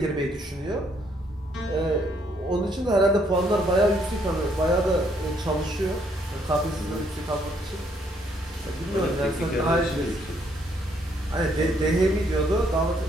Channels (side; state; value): both; normal; correlation 0.69